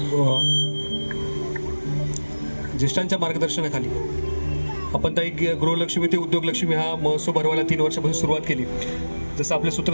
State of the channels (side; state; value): both; inverted; correlation -1.00